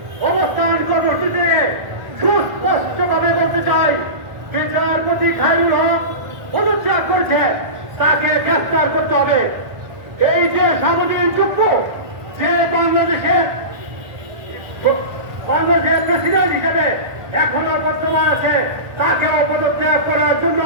অবস্থান কর্মসূচিতে সুস্পষ্টভাবে বলতে চাই, বিচারপতি খায়রুল হক পদত্যাগ করেছে, তাকে গ্রেফতার করতে হবে। এই যে সামুদ্রিক যুদ্ধ, যে বাংলাদেশের প্রেসিডেন্ট হিসেবে এখনো বর্তমান আছে, তাকেও পদত্যাগ করার জন্য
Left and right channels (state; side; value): late; left; 1.4 ms